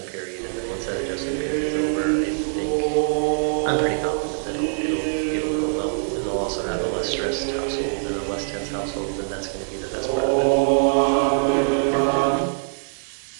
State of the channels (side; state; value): left; silent; 63 dB below the other